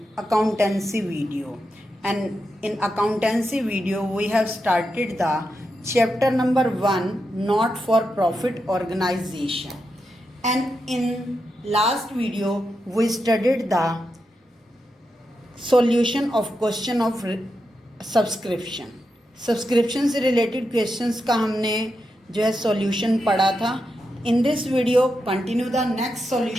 accountancy video. And in accountancy video we have started the chapter number 1, not for profit organization. And in last video we studied the solution of question of subscription से related questions का हमने जो है सॉल्यूशन पढ़ा था. In this video, continue the next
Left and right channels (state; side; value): normal; both; correlation 0.86